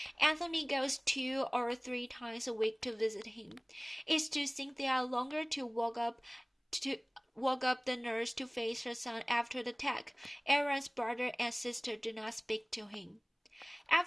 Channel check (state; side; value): identical; both; correlation 1.00